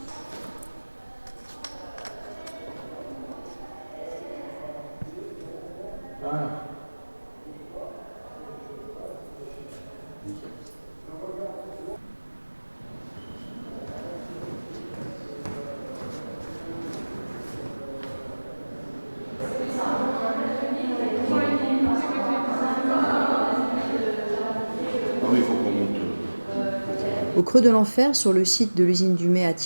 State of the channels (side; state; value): both; inverted; correlation -1.00